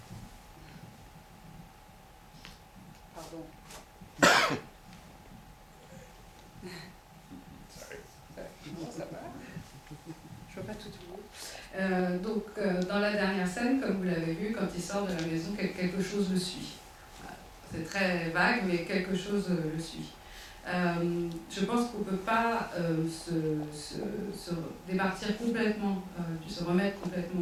Pardon. Sorry. Non, ça va. Je vois pas tout le monde. Dans la dernière scène, comme vous l'avez vu, quand il sort de la maison, quelque chose le suit. Voilà. C'est très vague, mais quelque chose le suit. Je pense qu'on ne peut pas se départir complètement, se remettre complètement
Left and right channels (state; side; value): identical; both; correlation 1.00